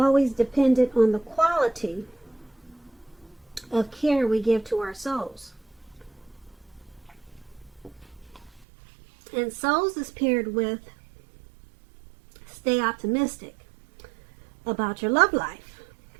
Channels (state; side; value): drops out; left; at 8.7 s